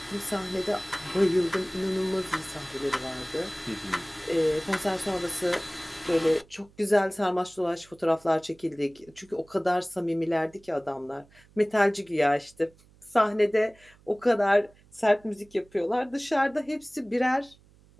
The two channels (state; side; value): noise; right; hum, 28 dB below the sound